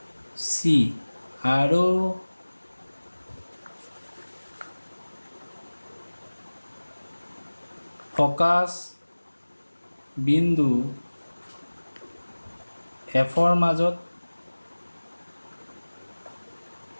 চি আৰু ফকাছ বিন্দু এফৰ মাজত।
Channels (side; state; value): both; inverted; correlation -1.00